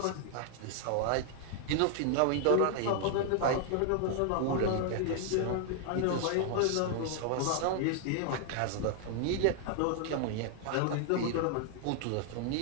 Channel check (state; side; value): different; both; correlation 0.00